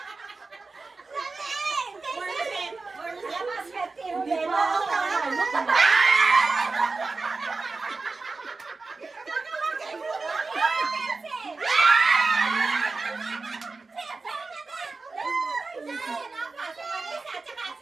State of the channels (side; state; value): left; quieter; 3.9 dB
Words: Hindi mo ako nakakano.